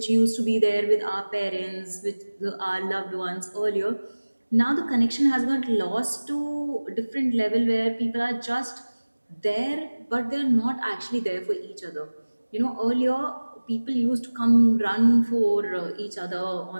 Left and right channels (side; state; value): both; inverted; correlation -1.00